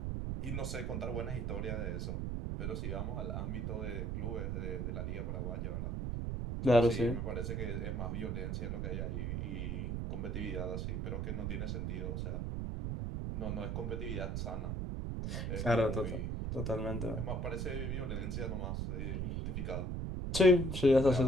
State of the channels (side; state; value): right; noise; rumble, 1 dB below the sound